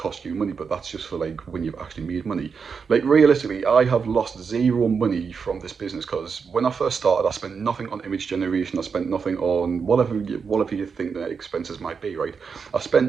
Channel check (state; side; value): quieter; left; 5.8 dB